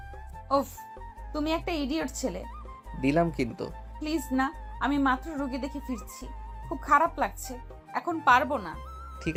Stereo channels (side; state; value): both; identical; correlation 1.00